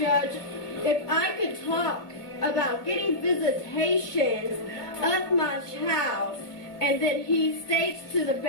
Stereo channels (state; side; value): late; right; 2.0 ms